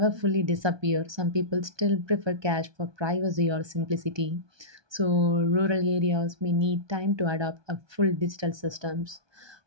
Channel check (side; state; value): left; late; 1.2 ms